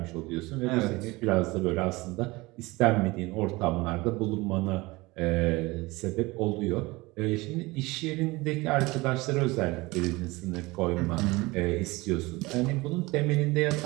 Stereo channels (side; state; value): left; quieter; 22.3 dB